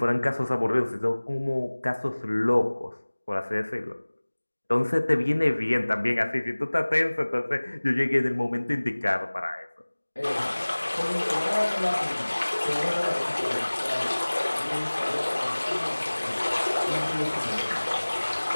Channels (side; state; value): both; inverted; correlation -1.00